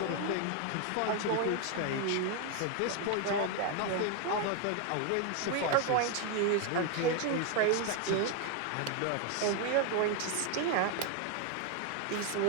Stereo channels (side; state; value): both; different; correlation 0.01